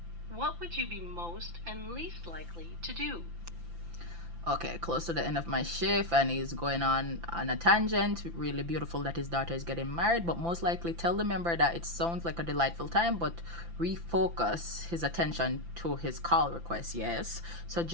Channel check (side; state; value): left; late; 5.9 ms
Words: What would you be most and least likely to do? Okay, close to the end of my shift, and he's going on a tangent. Really beautiful that his daughter is getting married, but most likely tell the member that it sounds like a delightful time, but refocus his attention to his call request. Yes,